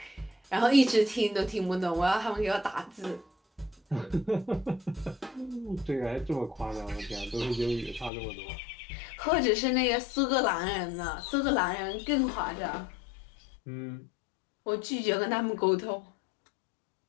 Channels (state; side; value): drops out; right; at 8.1 s